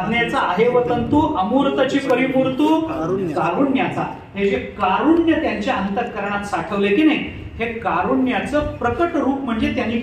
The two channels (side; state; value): both; identical; correlation 1.00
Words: आहे वतंतू, अमूर्तची परिमूर्तू कारुण्याचा. हे जे कारुण्य त्यांच्या अंतःकरणात साठवले की नाही, हे कारुण्याचं प्रकट रूप म्हणजे त्यांनी